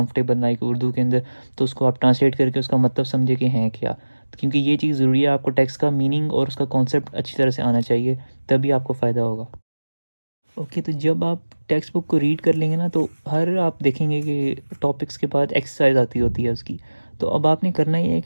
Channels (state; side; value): inverted; both; correlation -1.00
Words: लाइक उर्दू के अंदर, तो उसको आप ट्रांसलेट करके उसका मतलब समझे कि हैं क्या। क्योंकि ये चीज़ ज़रूरी है, आपको टेक्स्ट का मीनिंग और उसका कॉन्सेप्ट अच्छी तरह से आना चाहिए, तभी आपको फ़ायदा होगा। ओके, तो जब आप टेक्स्ट बुक को रीड कर लेंगे ना, तो हर आप देखेंगे कि टॉपिक्स के बाद एक्सरसाइज आती होती है उसकी। तो अब आपने करना ये है